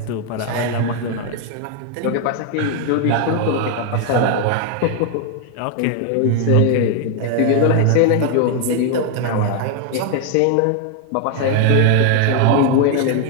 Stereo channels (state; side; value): different; both; correlation 0.01